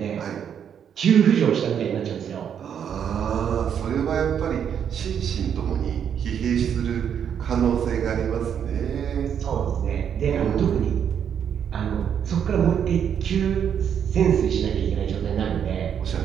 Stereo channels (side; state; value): left; quieter; 8.4 dB